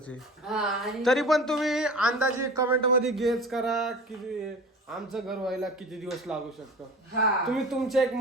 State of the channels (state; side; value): normal; both; correlation 0.38